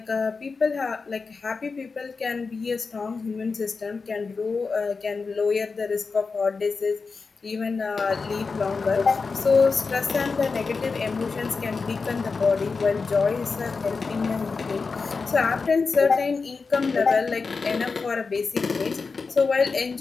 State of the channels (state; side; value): quieter; right; 4.6 dB